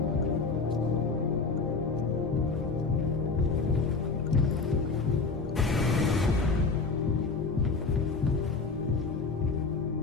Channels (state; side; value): quieter; right; 4.3 dB